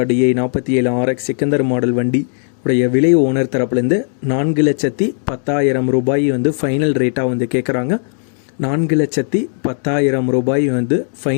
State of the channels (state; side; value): silent; right; 68 dB below the other